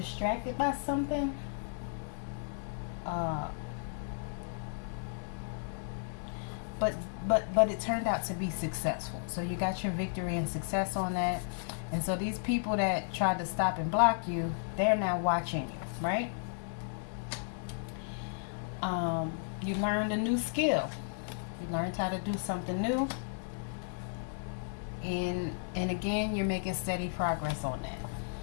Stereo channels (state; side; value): silent; right; digital silence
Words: by something, uh, but but it turned out to be successful. So you got your victory and success on that. And so these people that tried to stop and block you, they're now watching you, right? You learned a new skill. You learned how to do something new. And again, you're making steady progress on